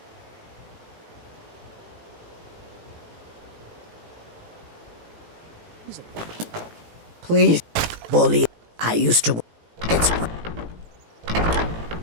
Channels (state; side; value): late; left; 18 ms